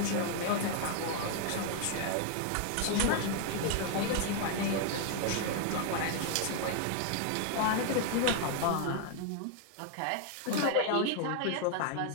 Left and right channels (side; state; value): both; different; correlation 0.00